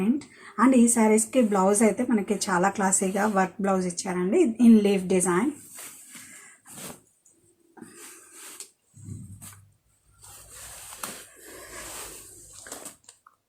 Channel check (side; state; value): both; identical; correlation 1.00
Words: And ఈ శారీస్కి బ్లౌజ్ అయితే మనకి చాలా క్లాసీగా వర్క్ బ్లౌజ్ ఇచ్చారండి in leaf design.